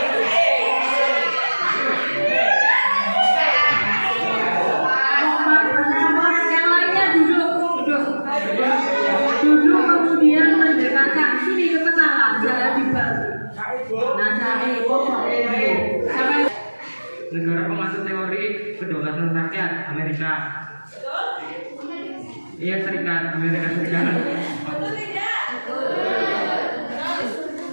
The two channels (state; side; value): inverted; both; correlation -1.00